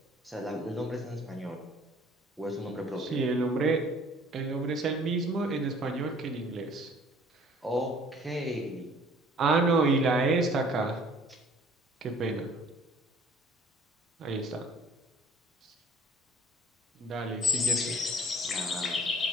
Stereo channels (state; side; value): normal; both; correlation 0.53